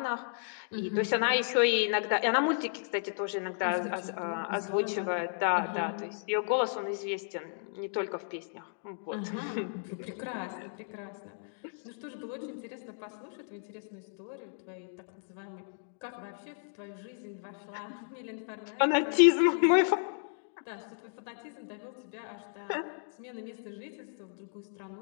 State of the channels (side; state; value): right; silent; digital silence